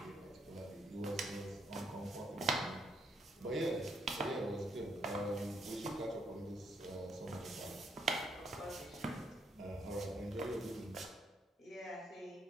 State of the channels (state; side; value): normal; both; correlation 0.73